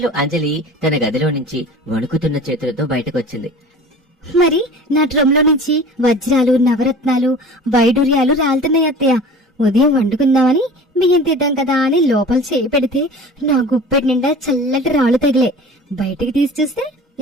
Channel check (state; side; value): normal; both; correlation 0.40